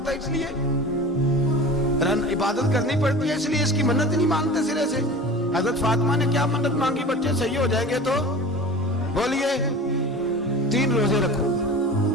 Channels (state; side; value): normal; both; correlation 0.37